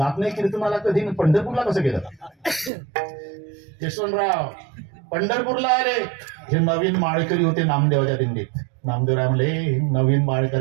नाही कीर्तनाला कधी. पंढरपूरला कसं गेलं? यशवंतराव पंढरपूरला आले. हे नवीन माळकरी होते नामदेवाच्या दिंडीत. नामदेवराय म्हणले नवीन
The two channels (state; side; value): drops out; left; at 2.7 s